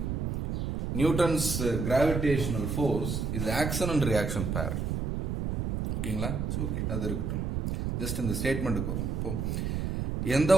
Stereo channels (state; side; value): noise; right; rumble, 1 dB below the sound